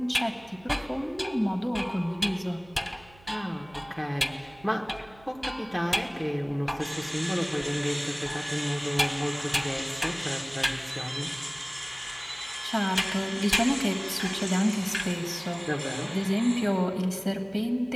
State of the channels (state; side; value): noise; right; hum, 25 dB below the sound